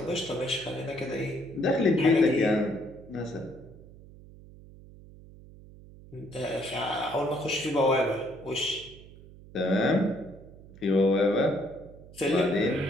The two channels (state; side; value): noise; right; hum, 20 dB below the sound